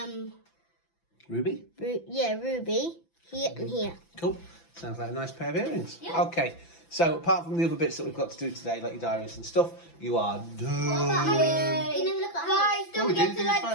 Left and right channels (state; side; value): late; right; 5.9 ms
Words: Ruby? ruby. Here and here. Cool. Sounds like a nice pair of earrings. Yeah. Okay. So apart from the other bits that we've got to do today, like your diaries and stuff, you are done. Guys, don't we forget didn't to do like this